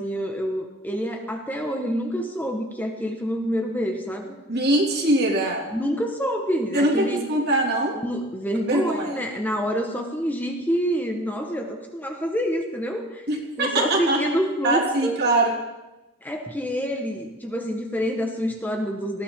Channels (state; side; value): normal; both; correlation 0.45